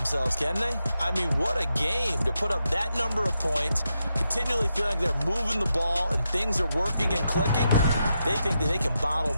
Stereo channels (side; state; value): both; inverted; correlation -0.85